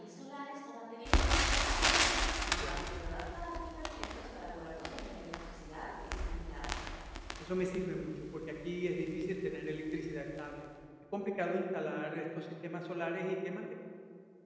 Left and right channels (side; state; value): both; identical; correlation 1.00